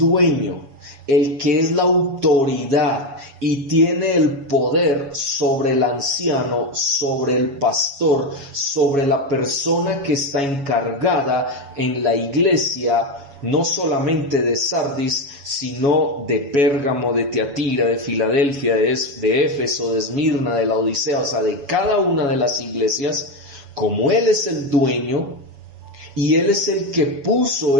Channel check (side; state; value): left; late; 7.2 ms